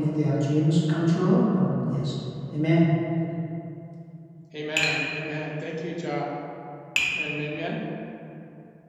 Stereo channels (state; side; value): identical; both; correlation 1.00